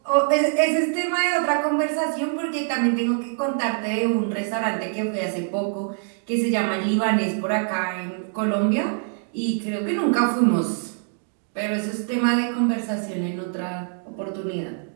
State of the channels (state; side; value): silent; left; 62 dB below the other